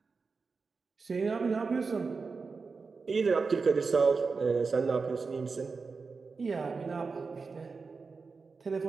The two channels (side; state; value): left; quieter; 4.6 dB